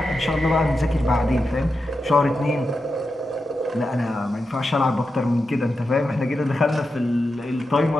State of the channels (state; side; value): normal; both; correlation 0.89